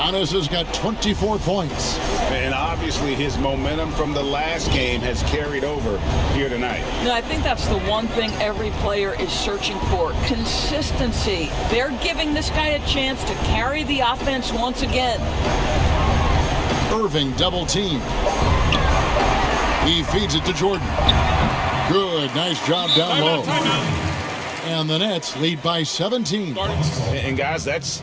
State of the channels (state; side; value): identical; both; correlation 1.00